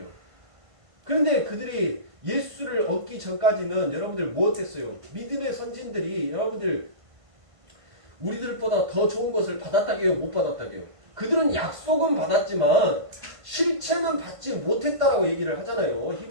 그런데 그들이 예수를 얻기 전까지는 여러분들 무엇했어요? 믿음의 선진들이 여러분들 우리들보다 더 좋은 것을 받았다게요? 못 받았다게요? 그들은 약속은 받았지만 실체는 받지 못했다라고 얘기를 하잖아요.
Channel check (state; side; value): late; left; 1.5 ms